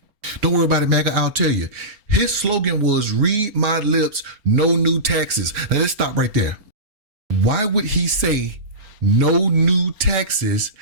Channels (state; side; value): late; left; 4.7 ms